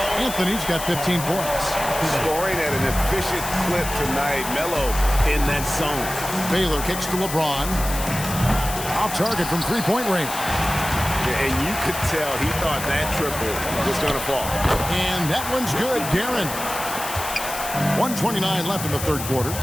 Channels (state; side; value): noise; left; hiss, 8 dB below the sound